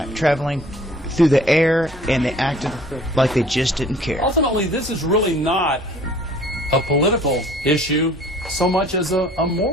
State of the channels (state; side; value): normal; both; correlation 0.51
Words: traveling through the air, and they acted like they just didn't care. Ultimately, this is really not a political issue so much as a